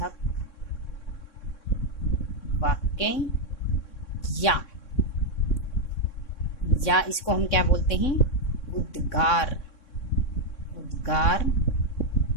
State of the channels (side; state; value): right; late; 3.6 ms